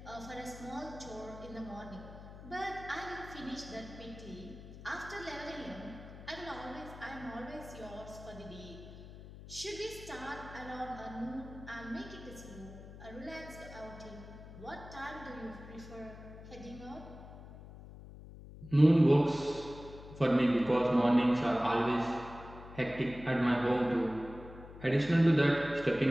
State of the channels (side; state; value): left; noise; hum, 15 dB below the sound